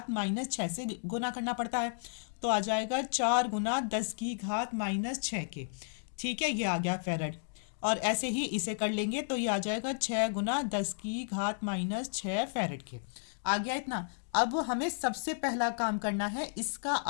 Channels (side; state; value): right; silent; digital silence